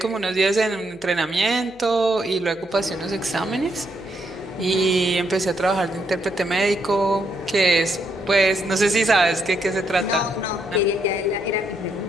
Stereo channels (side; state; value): left; noise; hum, 27 dB below the sound